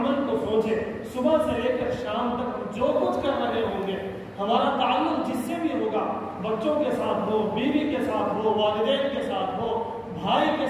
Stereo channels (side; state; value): both; identical; correlation 1.00